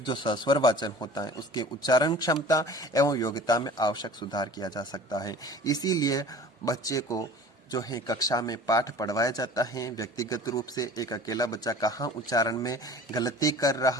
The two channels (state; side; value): normal; both; correlation 0.43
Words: जो सस्वर वाचन होता है उसके उच्चारण क्षमता एवं योग्यता में आवश्यक सुधार किया जा सकता है। इसीलिए बच्चे को जो है कक्षा में पाठ पढ़वाया जाता है व्यक्तिगत रूप से। एक अकेला बच्चा कहाँ उच्चारण में गलती कर